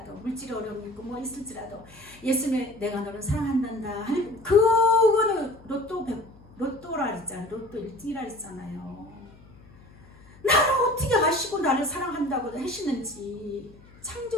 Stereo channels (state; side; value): noise; left; hum, 24 dB below the sound